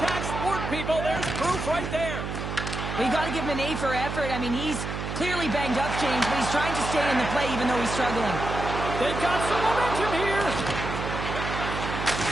sport, people. There's proof right there. Well, you got to give him an A for effort. I mean, he's clearly banged up, James, but he's trying to stay in the play even though he's struggling. They've got some momentum here.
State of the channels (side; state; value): right; noise; hum, 5 dB below the sound